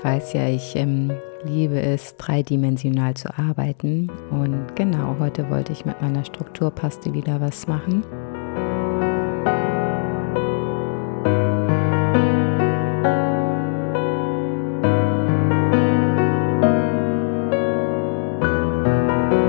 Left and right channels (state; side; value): silent; right; 65 dB below the other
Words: weiß ja, ich liebe es, dreidimensional zu arbeiten. Und genau, heute wollte ich mit meiner Strukturpaste wieder was machen.